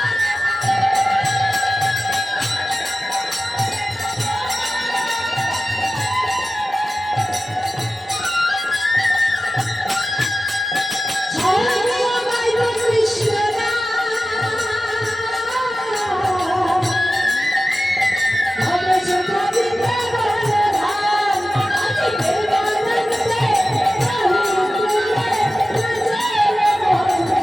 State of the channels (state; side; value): normal; both; correlation 0.95